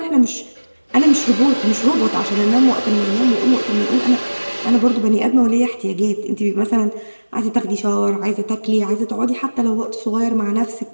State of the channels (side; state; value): both; inverted; correlation -1.00